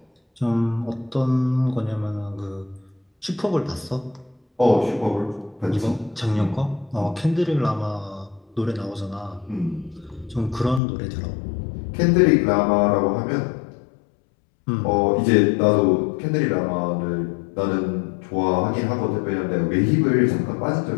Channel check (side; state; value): right; drops out; at 10.8 s